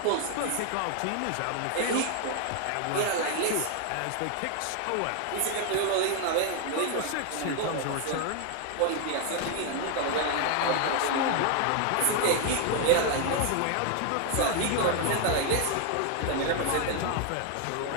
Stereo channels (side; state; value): both; different; correlation 0.00